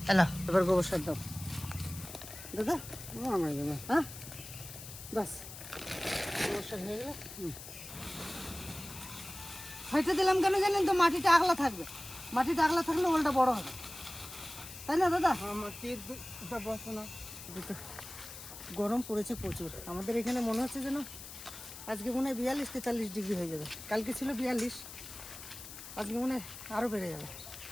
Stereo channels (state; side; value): noise; left; hiss, 13 dB below the sound